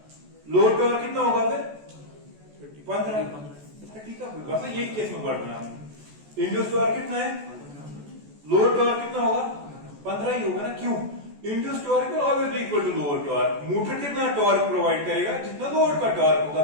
लोड टॉर्क कितना होगा फिर 15 30 का बस ये केस में वर्ड बना इंड्यूस्ड टॉर्क कितना है लोड टॉर्क कितना होगा 15 ही होगा ना क्यों induced torque will always be equal to load torque motor कितना टॉर्क प्रोवाइड करेगा जितना लोड का टॉर्क होगा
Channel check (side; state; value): left; late; 14 ms